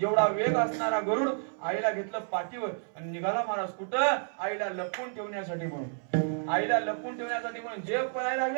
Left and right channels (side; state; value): left; silent; 58 dB below the other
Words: वेग असणारा गरुड आईला घेतलं पाठीवर आणि निघाला महाराज कुठं? आईला लपवून ठेवण्यासाठी म्हणून. आईला लपवून ठेवण्यासाठी म्हणून जग पळायला